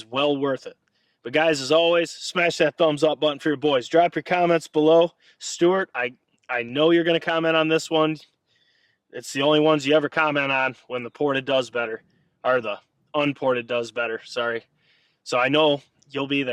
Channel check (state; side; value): identical; both; correlation 1.00